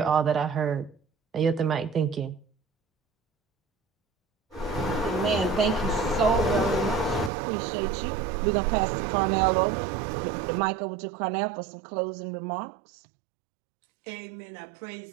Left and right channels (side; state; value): left; drops out; at 7.3 s